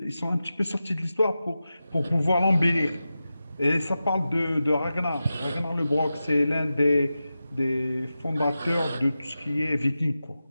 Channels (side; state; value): both; inverted; correlation -0.93